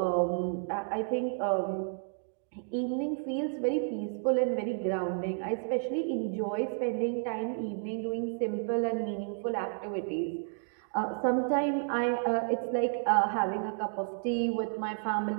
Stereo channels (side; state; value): left; silent; digital silence